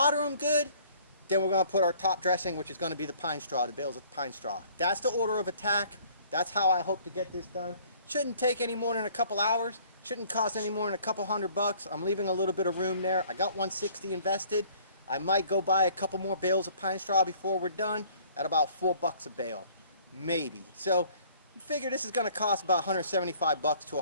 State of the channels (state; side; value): inverted; both; correlation -0.56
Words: them good, then we're going to put our top dressing, which is going to be the pine straw, the bales of pine straw. That's the order of attack. That's how I hope to get this done. Shouldn't take any more than a couple hours. Shouldn't cost any more than a couple $100. I'm leaving a little bit of room there. I got 160 invested. I might go buy a couple more bales of pine straw before we're done at about $4 a bale, maybe. So figure this is going to cost about $175 to